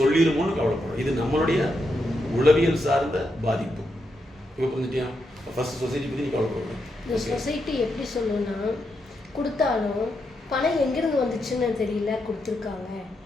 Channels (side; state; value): both; normal; correlation 0.83